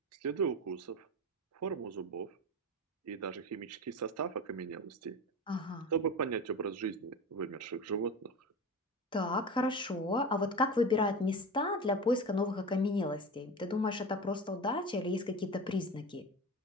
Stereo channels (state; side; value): normal; both; correlation 0.29